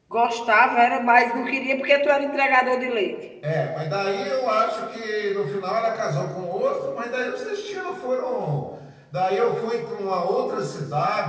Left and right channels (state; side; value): identical; both; correlation 1.00